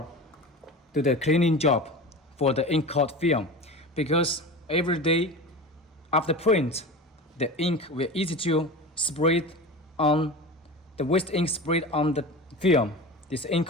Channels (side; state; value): both; normal; correlation 0.31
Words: do the cleaning job for the ink coat film, because every day after print, the ink will easy to spread on the waste ink spread on the film, this ink